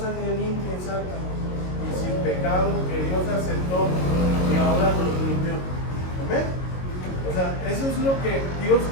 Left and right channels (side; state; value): right; late; 22 ms